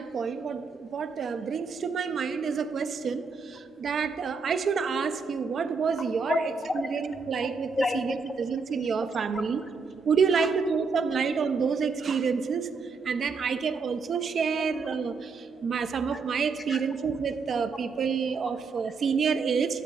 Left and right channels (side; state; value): left; quieter; 4.8 dB